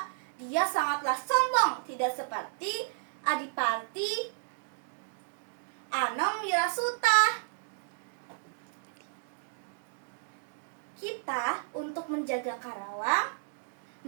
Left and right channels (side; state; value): left; silent; digital silence